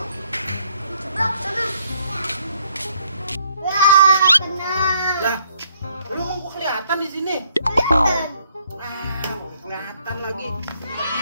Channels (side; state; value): both; inverted; correlation -0.68